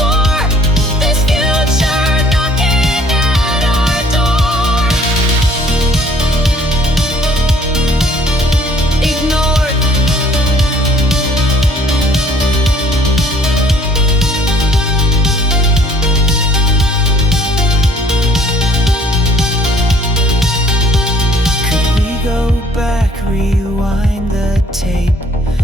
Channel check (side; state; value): both; normal; correlation 0.58